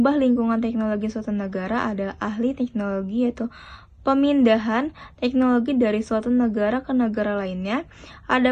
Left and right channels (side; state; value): both; identical; correlation 1.00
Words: lingkungan teknologi suatu negara adalah ahli teknologi, yaitu pemindahan teknologi dari suatu negara ke negara lainnya.